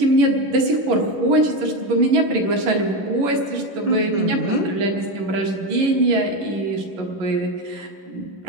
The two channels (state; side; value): late; left; 11 ms